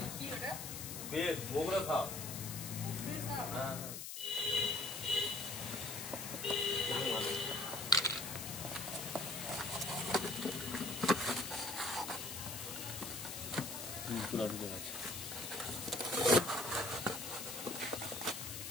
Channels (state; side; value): noise; left; hiss, 7 dB below the sound